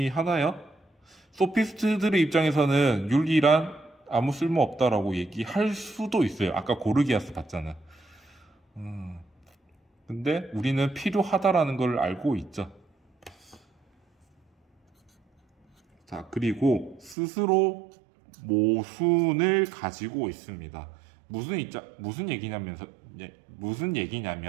소피스트들의 입장에서는 윤리란 아무 쓸모 없다라고 얘기할 수도 있어요. 아까 고르기아스 봤잖아. 근데 우리는 필요하다라는 걸 알고 있죠. 자, 그리고 스스로 모순을 가지고 있습니다. 무슨 얘기냐면,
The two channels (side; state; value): left; drops out; at 17.2 s